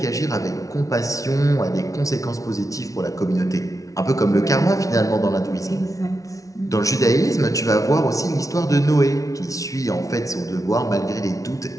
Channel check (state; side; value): late; right; 0.17 ms